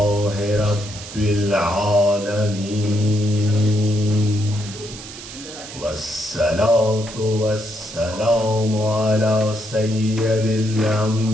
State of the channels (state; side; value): noise; right; hiss, 13 dB below the sound